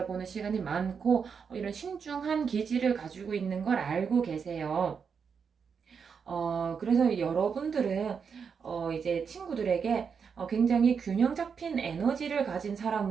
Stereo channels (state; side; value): quieter; left; 6.3 dB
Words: 시간이 많고 이런 신중한 기질을 가지고 있는 걸 알고 계세요. 그래서 여러분들은 이제 친구들에게 굉장히 균형 잡힌 에너지를 가진